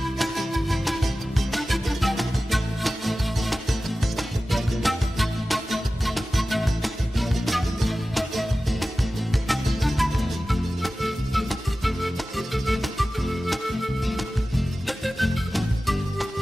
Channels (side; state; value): both; normal; correlation 0.95